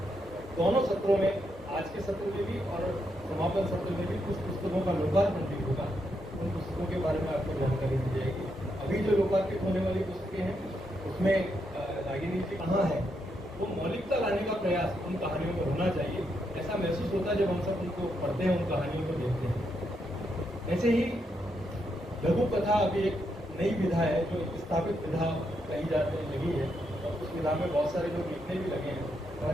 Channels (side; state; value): both; normal; correlation 0.80